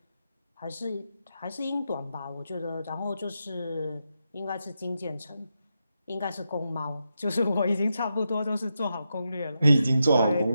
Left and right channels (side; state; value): both; inverted; correlation -0.86